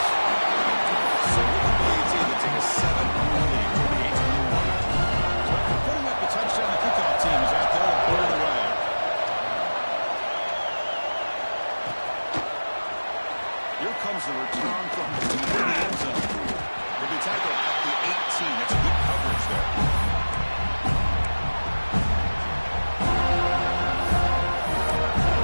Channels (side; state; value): both; inverted; correlation -1.00